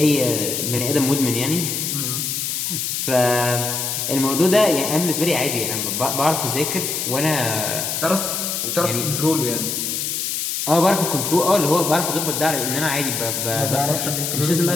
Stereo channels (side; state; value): left; noise; hiss, 2 dB below the sound